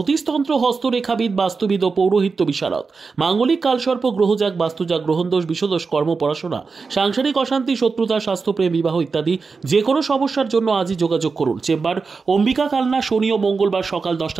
হস্তরেখাবিদ, বাস্তুবিদ ও পৌরোহিত্য বিশারদ। মাঙ্গলিক কালসর্প, গ্রহজাগ, বাস্তুজাগ, গ্রহণদোষ, বিষদোষ, কর্ম, পড়াশোনা, সাংসারিক অশান্তি, শত্রুতা, স্বাস্থ্যপ্রেম, বিবাহ ইত্যাদি যে কোনো সমস্যার জন্য আজই যোগাযোগ করুন। চেম্বার অম্বিকা, কালনা, শনি ও মঙ্গলবার সকাল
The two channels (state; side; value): quieter; left; 4.7 dB